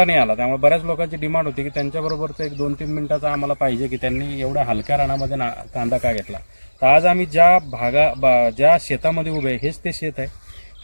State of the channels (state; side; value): inverted; both; correlation -1.00